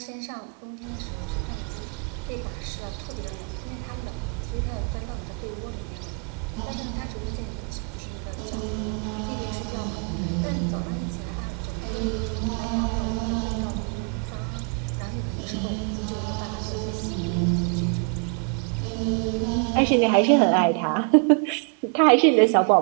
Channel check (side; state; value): left; quieter; 36.5 dB